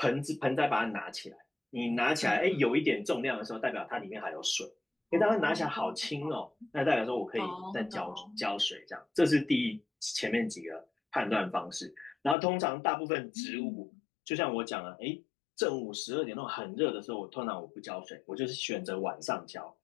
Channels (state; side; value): drops out; right; at 12.4 s